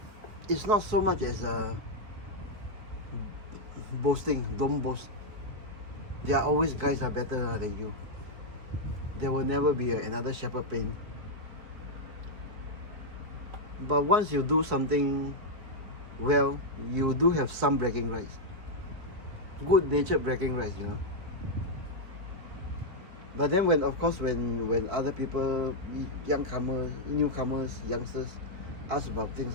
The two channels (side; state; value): left; late; 4.3 ms